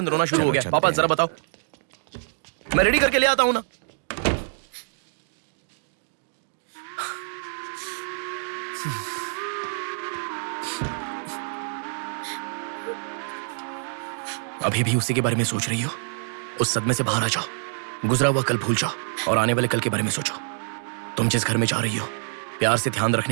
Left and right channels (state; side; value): silent; left; digital silence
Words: रोना शुरू हो गया। पापा जरा बताओ, मैं रेडी करके ले आता हूँ ना। अभी भी उसी के बारे में सोच रही हो? उस सदमे से बाहर आ जाओ, गुजरा हुआ कल भूल जाओ और आने वाले कल के बारे में सोचो। तुम जिस घर में जा रही हो, प्यार से ध्यान